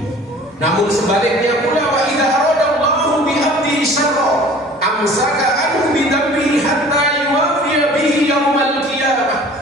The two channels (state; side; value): normal; both; correlation 0.47